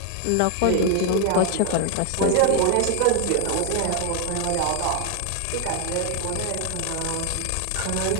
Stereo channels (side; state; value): both; different; correlation 0.00